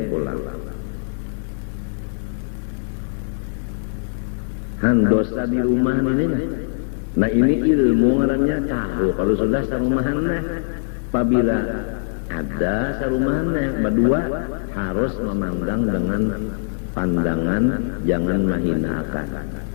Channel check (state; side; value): silent; right; digital silence